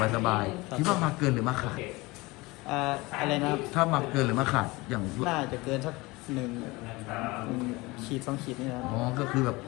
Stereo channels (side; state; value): right; quieter; 22.7 dB